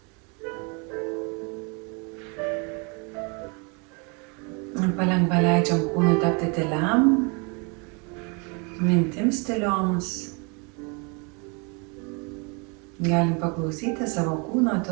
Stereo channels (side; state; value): left; quieter; 33.0 dB